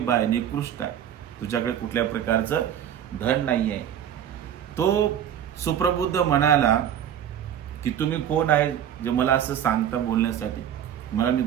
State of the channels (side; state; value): left; quieter; 9.9 dB